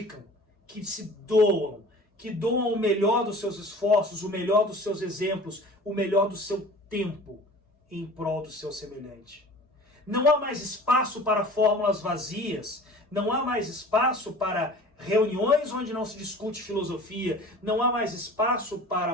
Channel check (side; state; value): both; normal; correlation 0.43